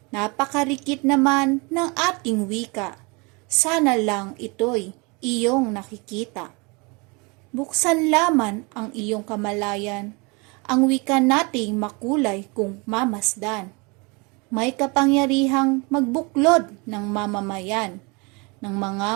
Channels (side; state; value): left; quieter; 29.0 dB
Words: Napakarikit naman ng ating wika. Sana lang ito'y iyong nakikita. Buksan laman ang iyong kamalayan, ang wika nating makulay kung mamasdan. May kapangyarihang magbuklod ng mamamayan, ng